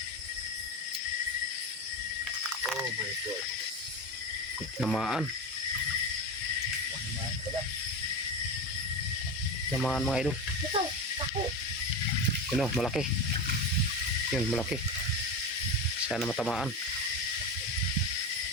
God. Tamaan mga idol. Yun o, malaki. Yun, malaki. Sana matamaan.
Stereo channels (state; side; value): normal; both; correlation 0.20